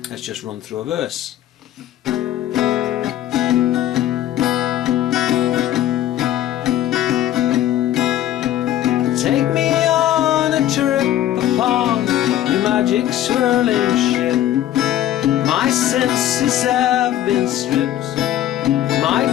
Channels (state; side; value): quieter; right; 12.5 dB